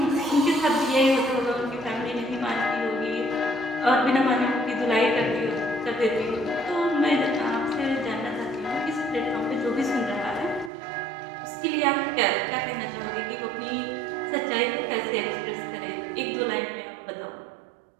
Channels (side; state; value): left; drops out; at 10.7 s